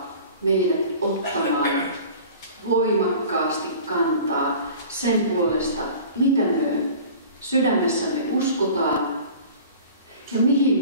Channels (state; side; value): inverted; both; correlation -0.43